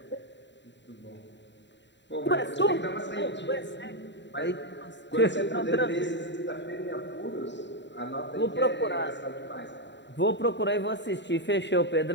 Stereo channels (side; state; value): right; late; 0.52 ms